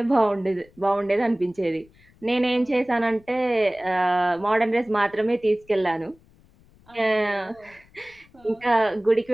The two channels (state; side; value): noise; left; rumble, 29 dB below the sound